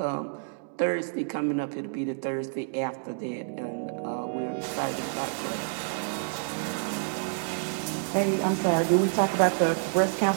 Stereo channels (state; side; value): silent; left; digital silence